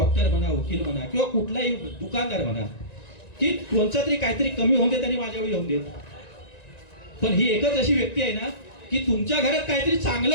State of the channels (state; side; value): late; right; 1.9 ms